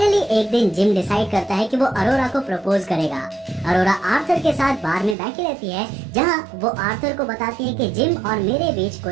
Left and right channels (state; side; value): drops out; left; at 5.2 s